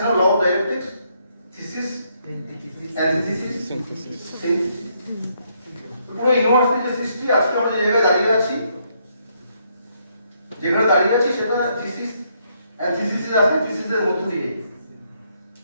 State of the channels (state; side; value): inverted; both; correlation -0.73